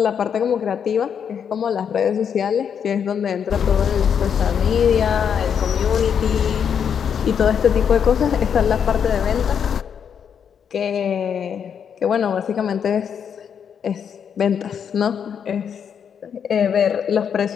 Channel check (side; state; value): right; quieter; 7.6 dB